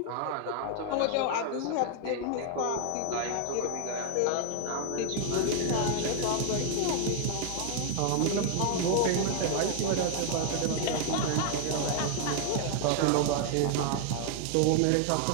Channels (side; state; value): both; different; correlation 0.00